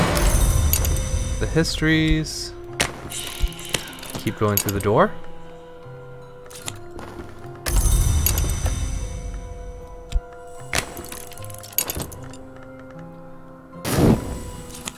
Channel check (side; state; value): both; identical; correlation 1.00